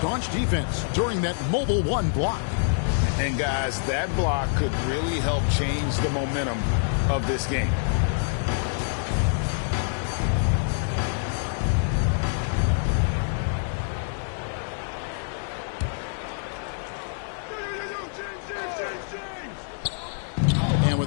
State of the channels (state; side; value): silent; right; digital silence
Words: defense during that Mobile 1 block. And guys, that block could really help change the momentum of this game. And